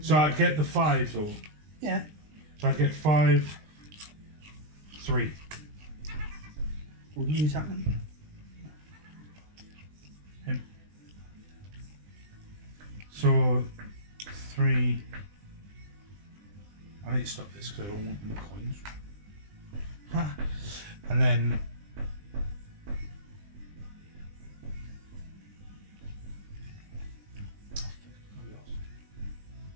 So I'd get the 5 though. Yeah. So I'd get 5, 3. Who are you attacking? So 3. I need to stop this because I don't want any coins. Ha. And then.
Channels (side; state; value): left; late; 20 ms